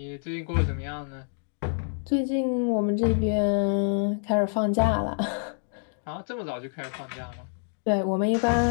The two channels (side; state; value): right; silent; digital silence